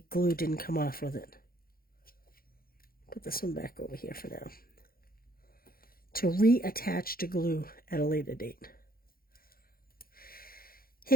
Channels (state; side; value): late; right; 0.43 ms